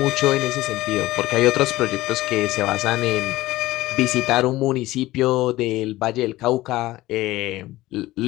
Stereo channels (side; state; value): right; quieter; 17.4 dB